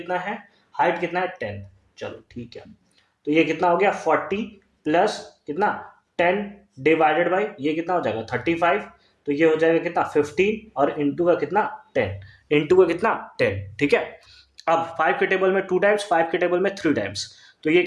है, हाइट कितना है 10। चलो ठीक है, तो ये कितना हो गया 40 प्लस कितना 10 डिवाइडेड बाई ये कितना हो जाएगा 35, तो ये हो जाएगा कितना 15 और इंटू का कितना 10, इंटू का कितना 10, ठीक है। अब 5 के टेबल में 2 टाइम्स, 5 के टेबल में 3 टाइम्स, तो ये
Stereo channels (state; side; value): identical; both; correlation 1.00